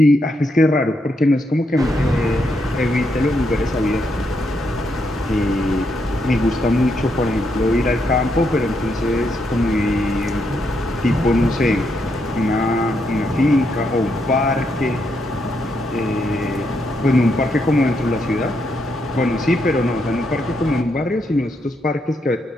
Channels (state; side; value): normal; both; correlation 0.79